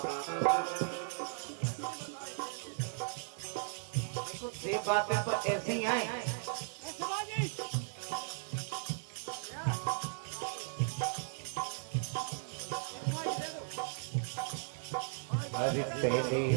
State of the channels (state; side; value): silent; left; digital silence